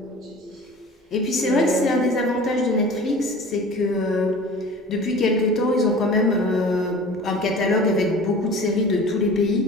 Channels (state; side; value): normal; both; correlation 0.41